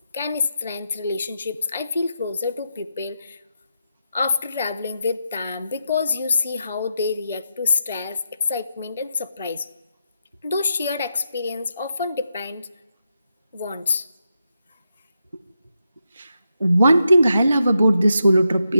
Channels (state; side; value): inverted; both; correlation -0.85